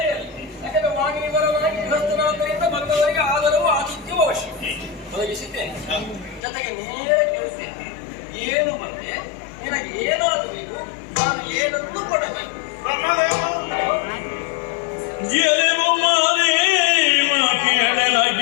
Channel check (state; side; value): drops out; right; at 6.4 s